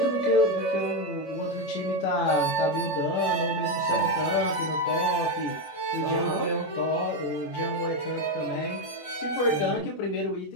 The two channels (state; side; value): late; right; 20 ms